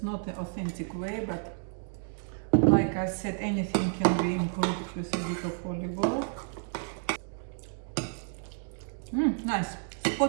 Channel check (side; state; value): left; silent; 57 dB below the other